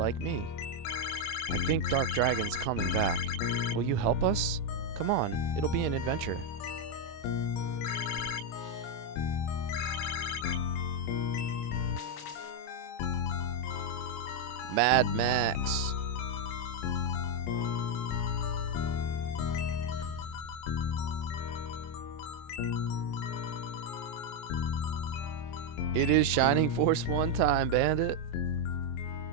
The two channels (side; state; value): right; late; 26 ms